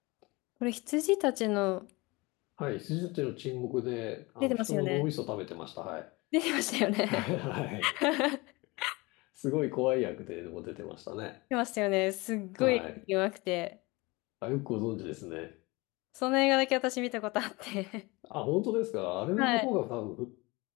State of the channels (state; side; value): quieter; right; 24.2 dB